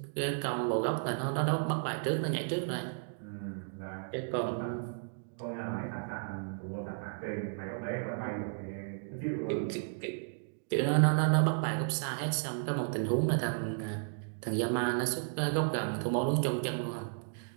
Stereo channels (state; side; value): silent; left; digital silence